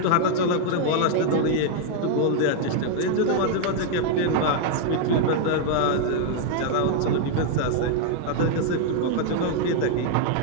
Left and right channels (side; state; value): both; different; correlation 0.00